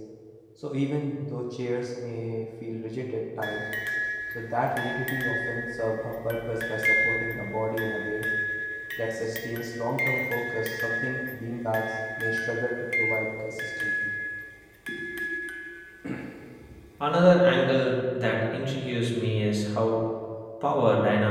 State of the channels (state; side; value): identical; both; correlation 1.00